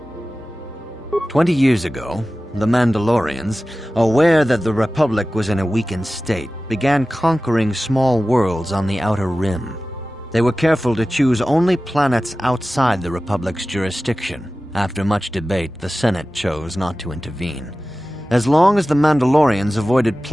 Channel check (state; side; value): normal; both; correlation 0.96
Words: 20 years ago, the Mandalorians, aware that the Republic was in a weakened state, began conquering small worlds on the Outer Rim. They were careful to choose only planets outside the Republic's jurisdiction. After much debate, the Senate chose not to intervene. As long as the Mandalorians avoided